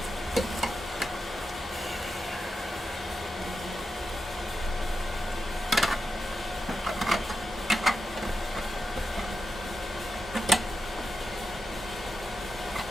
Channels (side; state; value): both; normal; correlation 0.89